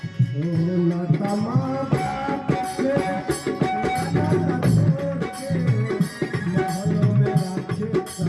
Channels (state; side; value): identical; both; correlation 1.00